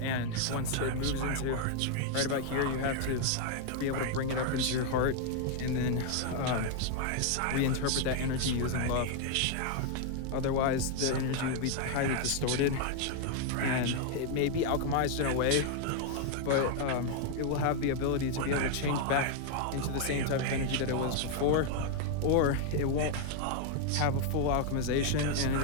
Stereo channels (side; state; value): both; different; correlation 0.00